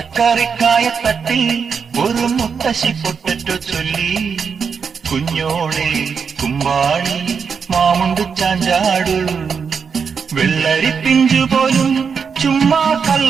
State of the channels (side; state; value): left; quieter; 6.1 dB